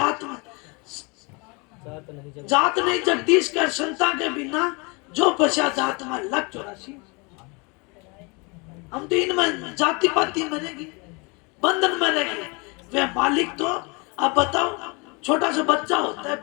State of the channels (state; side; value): quieter; right; 29.8 dB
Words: में जात नहीं जगदीश कर संता के बिना जो पछा जात में लग 84। हम तो इनमें जाति पाति में रहेंगे, बंधन में रहेंगे। वे मालिक तो अब बताओ, छोटा सा बच्चा होता है